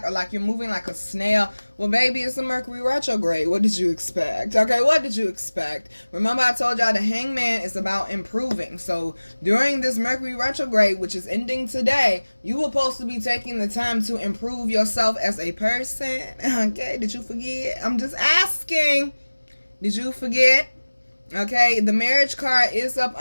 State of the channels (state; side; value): inverted; both; correlation -1.00